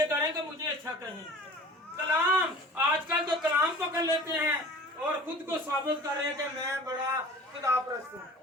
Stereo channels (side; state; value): both; normal; correlation 0.43